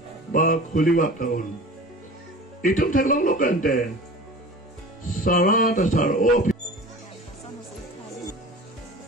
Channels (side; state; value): both; normal; correlation 0.38